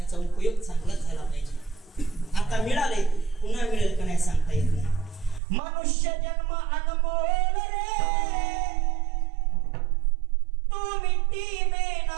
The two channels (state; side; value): drops out; left; at 5.4 s